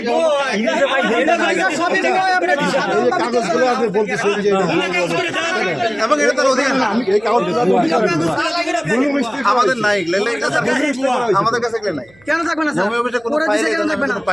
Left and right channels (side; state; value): right; noise; hum, 29 dB below the sound